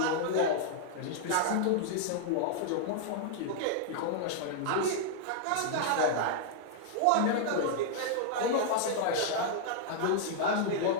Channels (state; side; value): different; both; correlation -0.01